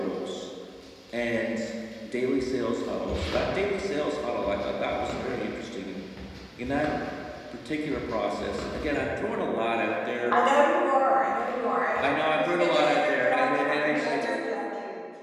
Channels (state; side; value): identical; both; correlation 1.00